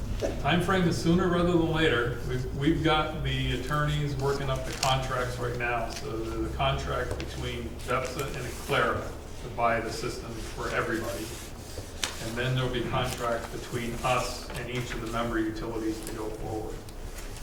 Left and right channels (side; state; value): both; identical; correlation 1.00